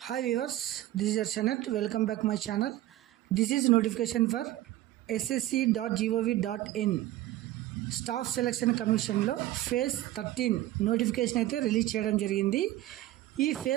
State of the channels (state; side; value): quieter; left; 15.1 dB